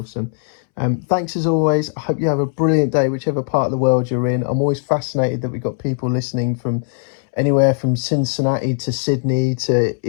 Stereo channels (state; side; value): silent; right; 67 dB below the other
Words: Thanks as always. I hope you have a brilliant day, whichever part of the world you're in. I'm always fascinated that we've got people listening from anywhere from Cincinnati to Sydney to